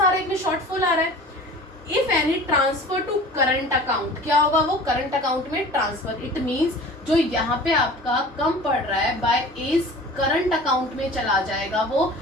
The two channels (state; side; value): normal; both; correlation 0.41